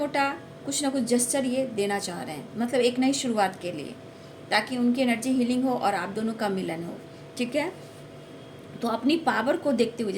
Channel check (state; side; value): identical; both; correlation 1.00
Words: कुछ ना कुछ जेस्चर ये देना चाह रहे हैं, मतलब एक नई शुरुआत के लिए, ताकि उनकी एनर्जी हीलिंग हो और आप दोनों का मिलन हो। ठीक है, तो अपनी पावर को देखते हुए,